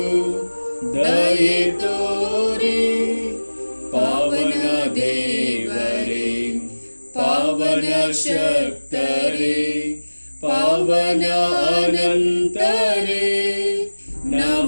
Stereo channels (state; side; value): inverted; both; correlation -1.00